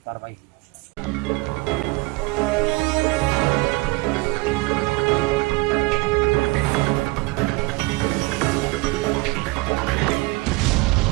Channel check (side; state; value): left; quieter; 23.3 dB